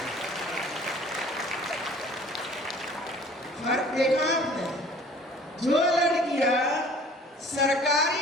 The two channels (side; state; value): both; normal; correlation 0.50